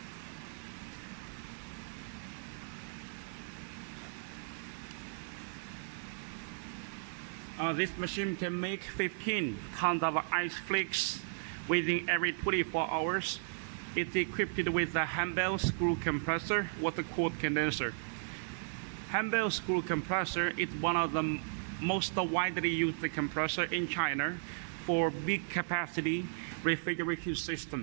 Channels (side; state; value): left; silent; digital silence